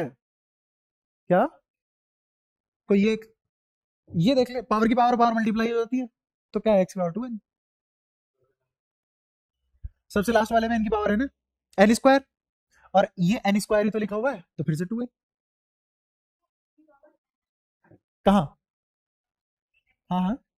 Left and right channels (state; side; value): identical; both; correlation 1.00